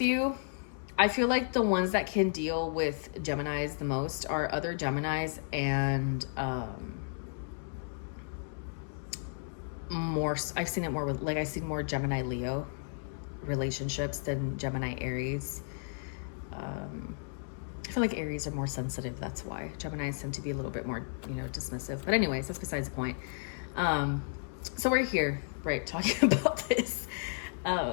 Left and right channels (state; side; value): silent; right; digital silence